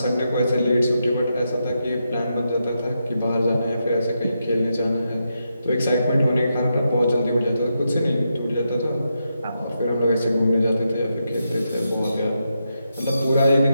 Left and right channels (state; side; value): inverted; both; correlation -0.84